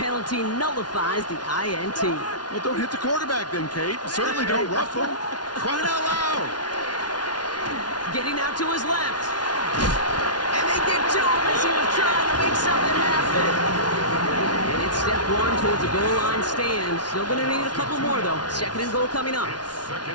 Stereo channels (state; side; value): late; right; 0.69 ms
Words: nullifies the INT. Well, don't hit the quarterback then, Kate. Certainly don't rough him. Crying out loud. Getting out to his left. And they get to him as he was trying to make something happen. And it's step 1 towards a goal line stand. Still going to need a couple more, though. 2nd and goal coming up.